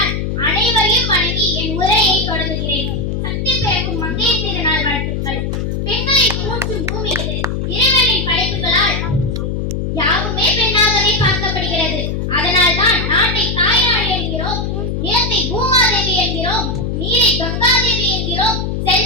அனைவரையும் வணங்கி என் உரையை தொடங்குகிறேன். சக்தி பிறக்கும் மங்கைய திருநாள் வாழ்த்துக்கள். பெண்களை போற்றும் பூமி இது. இறைவனின் படைப்புகளால் யாவுமே பெண்ணாகவே பார்க்கப்படுகிறது. அதனால் தான் நாட்டை தாய்நாடு என்கிறோம், நிலத்தை பூமாதேவி என்கிறோம், நீரை கங்காதேவி என்கிறோம்,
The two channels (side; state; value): left; noise; hum, 2 dB below the sound